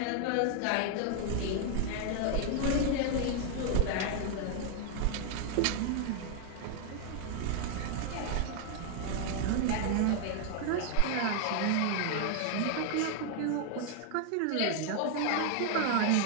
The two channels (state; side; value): different; both; correlation 0.00